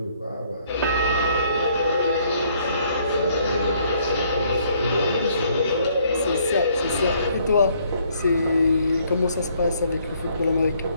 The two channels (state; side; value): inverted; both; correlation -0.65